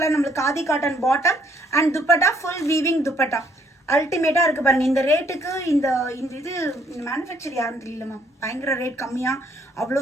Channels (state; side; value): normal; both; correlation 0.66